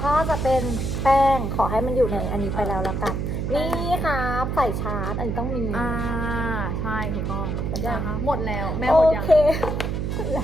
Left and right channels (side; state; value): right; noise; hum, 1 dB below the sound